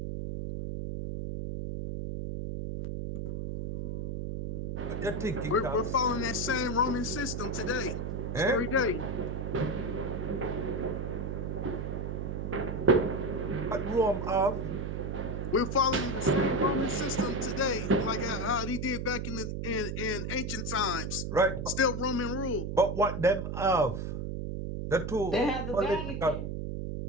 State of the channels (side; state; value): right; noise; hum, 3 dB below the sound